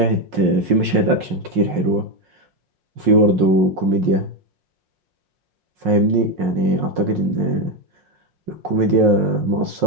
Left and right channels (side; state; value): left; late; 5.6 ms